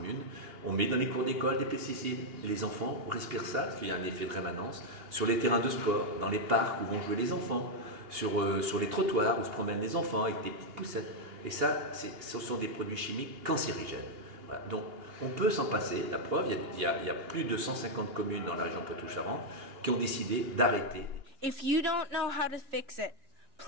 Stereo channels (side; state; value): left; late; 2.8 ms